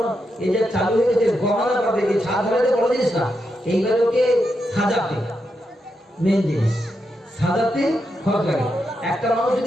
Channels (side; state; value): both; normal; correlation 0.84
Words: এই যে চালু হয়ে গেছে গহনা পাবে, এই ছাদ ফেলাতে বড় জিনিস না, এইগুলোকে সাজাতে মেন জিনিস, সাজাতে খরচ লাগে। একটা মানুষ